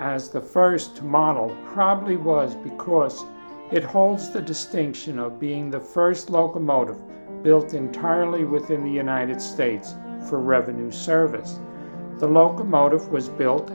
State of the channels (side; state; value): both; inverted; correlation -1.00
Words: the first to model probably was because it holds the distinction of being the first locomotive built entirely within the United States for revenue service. The locomotive was